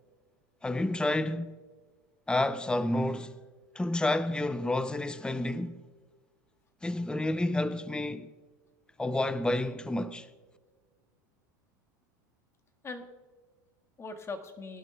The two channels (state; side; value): normal; both; correlation 0.91